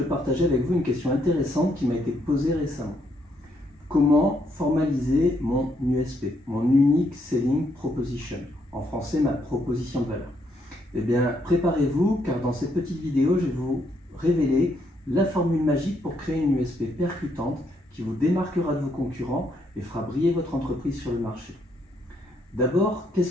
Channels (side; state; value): both; normal; correlation 0.74